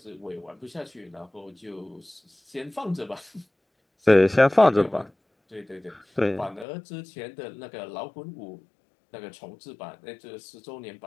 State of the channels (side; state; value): right; drops out; at 6.7 s